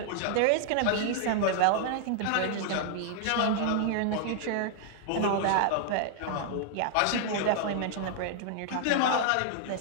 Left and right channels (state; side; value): different; both; correlation 0.00